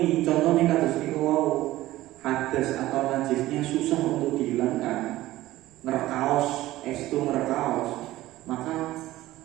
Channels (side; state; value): left; quieter; 16.3 dB